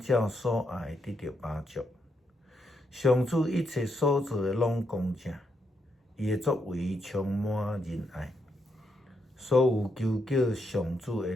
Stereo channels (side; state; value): both; normal; correlation 0.80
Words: 所爱得到饱足。上主一切所做的拢公正。伊的作为充满仁爱，所有求叫上主的